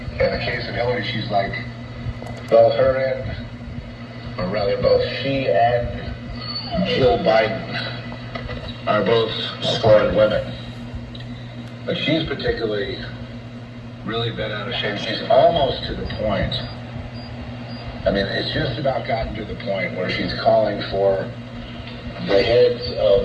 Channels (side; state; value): both; identical; correlation 1.00